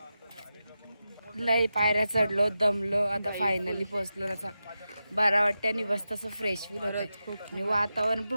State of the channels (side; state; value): both; inverted; correlation -0.91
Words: लय पायऱ्या चढलो, दमलो, आता फायनली पोहोचलो. आता बरा वाटतं आणि बस तसं फ्रेश फील होत. आणि वातावरण